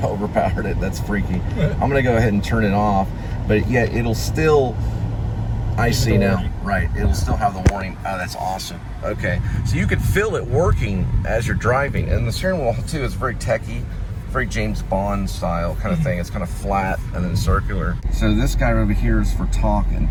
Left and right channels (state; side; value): identical; both; correlation 1.00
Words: overpowered it. That's freaky. I'm gonna go ahead and turn it off, but yeah, it'll still I see now. Right. It'll still have the warning. Oh, that's awesome. Okay. So you could feel it working as you're driving. And the steering wheel, too, is very techy, very James Bond style kind of thing. It's kind of flat and then circular. So this guy over here is for talk and